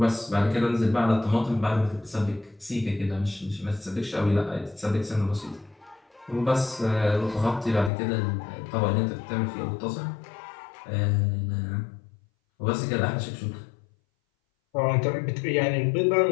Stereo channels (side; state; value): right; drops out; at 7.9 s